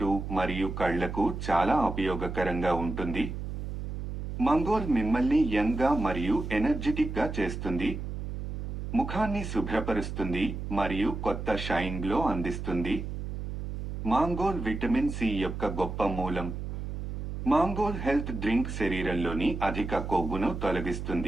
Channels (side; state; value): right; noise; hum, 5 dB below the sound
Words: మరియు కళ్లకు చాలా ఉపయోగకరంగా ఉంటుంది. మంగోల్ మిమ్మల్ని యంగ్ గా మరియు ఎనర్జెటిక్ గా చేస్తుంది. ముఖాన్ని శుభ్రపరుస్తుంది మరియు కొత్త షైన్ గ్లో అందిస్తుంది. మాంగోల్ విటమిన్ సి యొక్క గొప్ప మూలం. మాంగోల్ హెల్త్ డ్రింక్ శరీరంలోని అధిక కొవ్వును